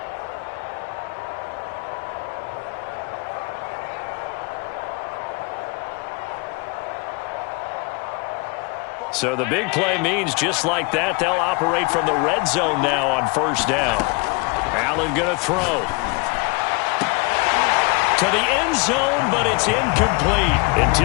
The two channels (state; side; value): quieter; right; 28.0 dB